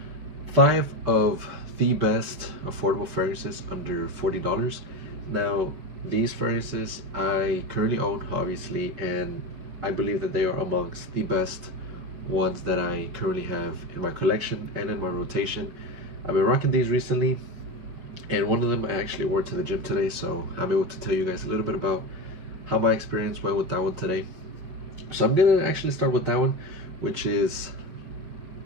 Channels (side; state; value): left; late; 6.2 ms